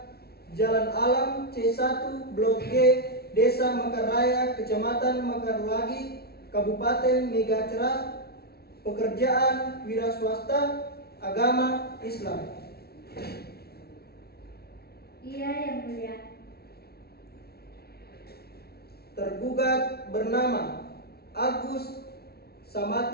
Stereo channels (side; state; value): right; late; 0.45 ms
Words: Jalan Alam C1 Blok G, Desa Mekar Raya, Kecamatan Mekar Lagi, Kabupaten Megacerah. Pekerjaan wira swasta, agama Islam. Iya Yang Mulia. Tergugat bernama Agus